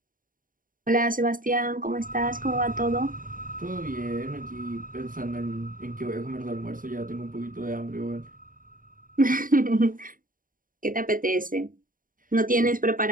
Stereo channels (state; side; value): late; left; 0.40 ms